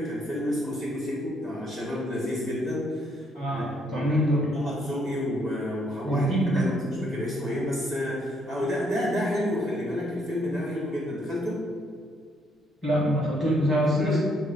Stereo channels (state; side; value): normal; both; correlation 0.70